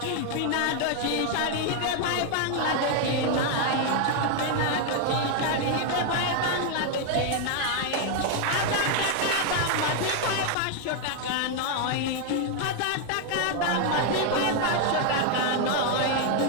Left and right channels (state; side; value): different; both; correlation 0.00